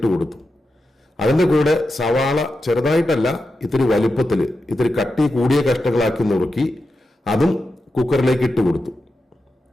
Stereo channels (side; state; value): both; normal; correlation 0.89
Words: കൊടുത്തു. അതിന്റെ കൂടെ സവാള ചെറുതായിട്ടല്ല, ഇത്തിരി വലുപ്പത്തിൽ ഇത്തിരി കട്ടി കൂടിയ കഷ്ണങ്ങളാക്കി നുറുക്കി അതും കുക്കറിലേക്ക് ഇട്ട് കൊടുത്തു.